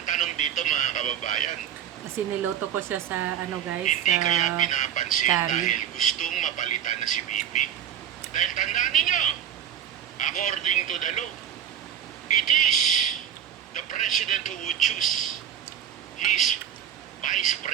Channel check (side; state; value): left; quieter; 9.5 dB